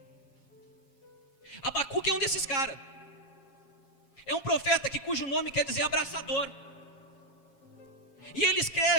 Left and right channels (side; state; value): right; late; 7.3 ms